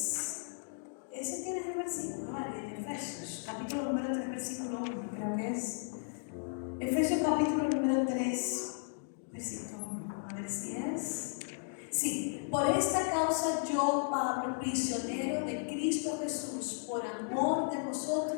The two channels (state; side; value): silent; right; digital silence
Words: Ese tiene el versículo, ¿vale? En Efesios capítulo número 3, versículo 1, creo que es. Efesios capítulo número 3, versículo 1. A ver si es. Sí, por esta causa yo, Pablo, prisionero de Cristo Jesús, por amor de